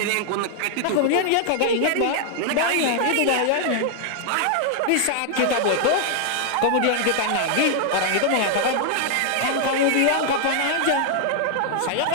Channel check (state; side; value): different; both; correlation 0.00